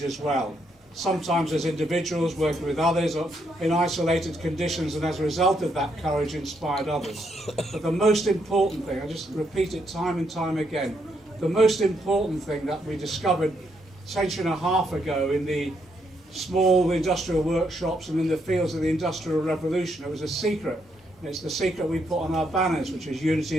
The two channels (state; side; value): normal; both; correlation 0.76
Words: as well. Sometimes as individuals working with others or in isolated conditions, and as a result of that courage inspired others. But the most important thing, I just repeat it time and time again, the most important thing that we discovered a century and a half ago in the small industrial workshops and in the fields of the Industrial Revolution, it was a secret. And it's the secret we put on our banners, which is unity